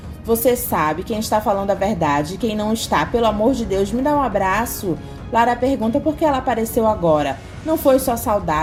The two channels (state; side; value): identical; both; correlation 1.00